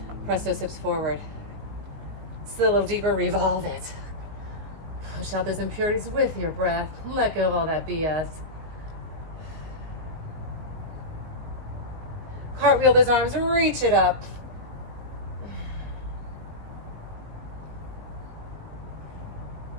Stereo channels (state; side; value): late; left; 19 ms